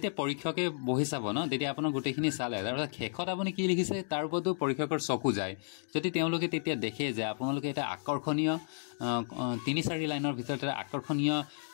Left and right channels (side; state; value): right; silent; digital silence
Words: পৰীক্ষকে বহি চাব ন, তেতিয়া আপোনাৰ গোটেইখিনি চালে তাৰপিছত শেষত আপুনি কি লিখিছে তাৰ ওপৰতো পৰীক্ষকৰ চকু যায়। যদি তেওঁলোকে তেতিয়া দেখে যে আপোনালোকে এটা আকৰ্ষণীয় 3-4 লাইনৰ ভিতৰত এটা আকৰ্ষণীয়